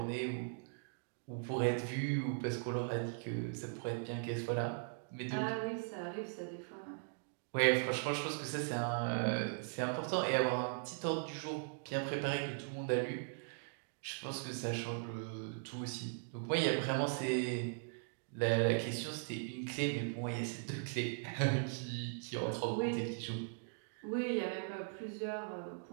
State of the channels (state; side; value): silent; left; digital silence